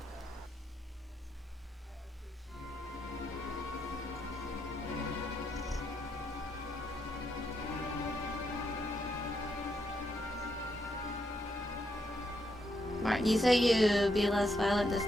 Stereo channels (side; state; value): both; normal; correlation 0.79